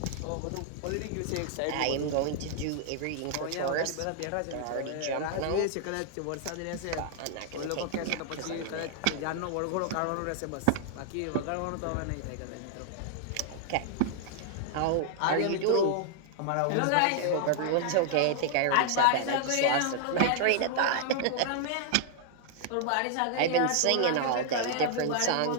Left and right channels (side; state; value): both; different; correlation 0.00